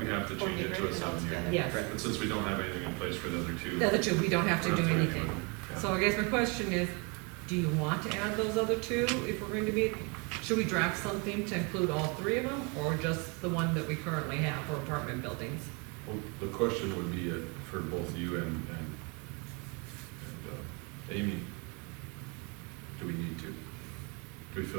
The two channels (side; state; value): left; quieter; 31.9 dB